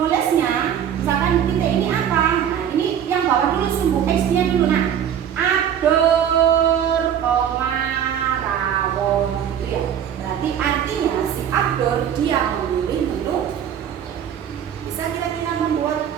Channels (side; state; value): left; quieter; 9.2 dB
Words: misalkan titik ini apa? Nah,